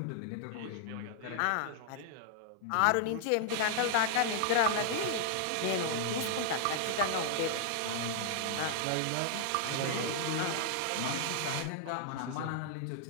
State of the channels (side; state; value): both; different; correlation -0.01